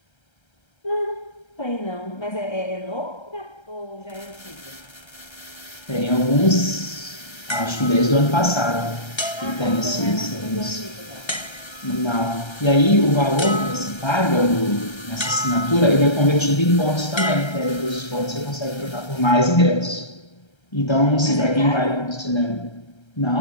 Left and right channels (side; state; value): right; late; 1.3 ms